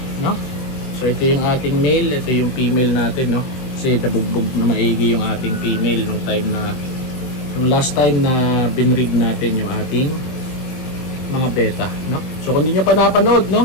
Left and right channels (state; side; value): late; right; 23 ms